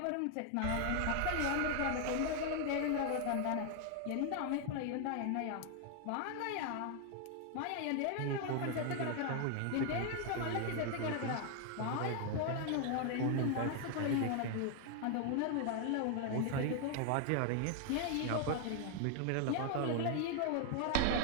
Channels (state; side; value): different; both; correlation 0.00